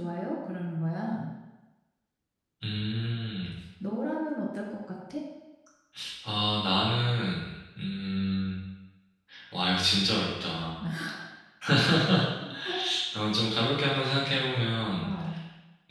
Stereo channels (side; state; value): both; identical; correlation 1.00